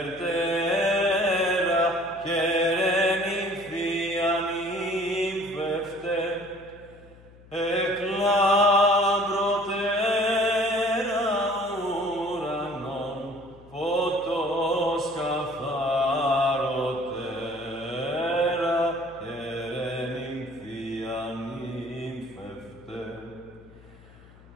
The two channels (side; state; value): left; noise; hum, 23 dB below the sound